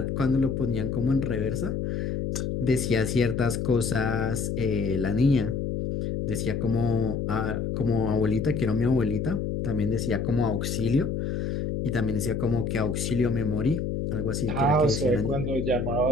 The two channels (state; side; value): noise; left; hum, 2 dB below the sound